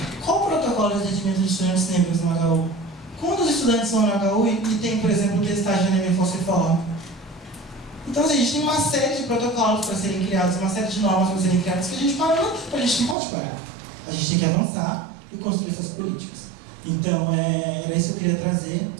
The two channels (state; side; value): drops out; left; at 13.2 s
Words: qual o protocolo de atendimento de estudantes negros no HU? Quantos estudantes vão no HU e tem, por exemplo, testagem de anemia falciforme? Então, assim, a gente tem uma série de protocolos para serem criados, uma série de normas para serem criadas que a gente não pode parar. A gente tem que avançar e construir essas políticas. Então, era isso que eu queria trazer,